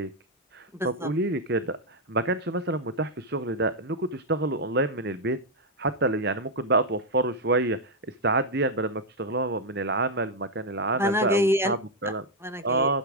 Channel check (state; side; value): normal; both; correlation 0.00